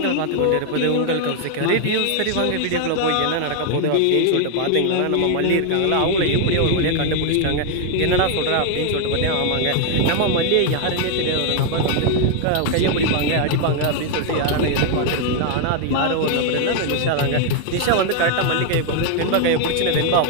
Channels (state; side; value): different; both; correlation 0.00